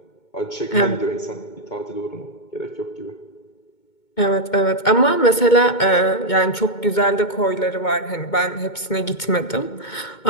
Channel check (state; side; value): late; right; 2.2 ms